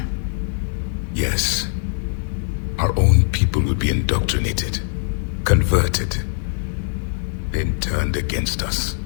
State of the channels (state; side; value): silent; right; 64 dB below the other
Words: Yes. Our own people would be indoctrinated, converted, then turned against us.